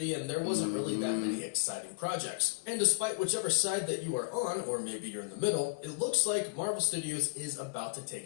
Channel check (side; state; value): right; quieter; 33.7 dB